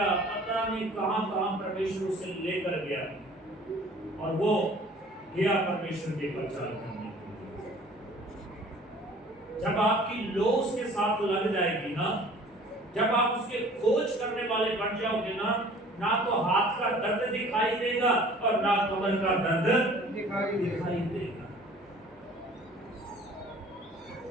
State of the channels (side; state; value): both; normal; correlation 0.50